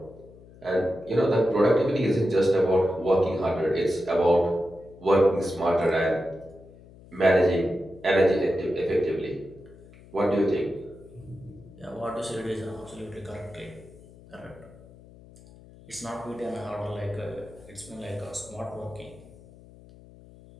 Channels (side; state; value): left; noise; hum, 22 dB below the sound